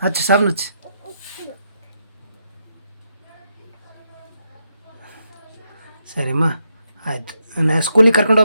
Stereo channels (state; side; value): inverted; both; correlation -0.80